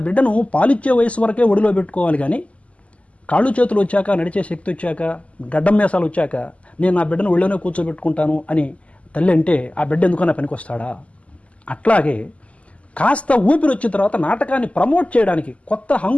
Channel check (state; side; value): late; right; 0.064 ms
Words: బిడ్డను పాలిచ్చే వయసు వరకే ఒడిలో పెట్టుకోవాలి, కానీ కాళ్ళు చేతులు వచ్చాక, నడిచే శక్తి వచ్చాక, గడ్డం మేసాలు వచ్చాక నేను నా బిడ్డను ఒళ్ళోనే కూర్చోబెట్టుకుంటాను అని తల్లి అంటే ఆ బిడ్డ ఎందుకన్నా పనికొస్తాడా? అట్లాగే కాస్త ఊపిరి వచ్చిన తర్వాత నాటకాన్ని ప్రమోట్ చేయడానికి, కొత్త